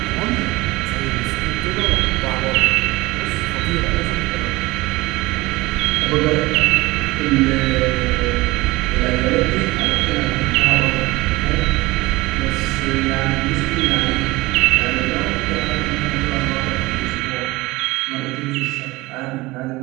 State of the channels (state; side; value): quieter; left; 20.7 dB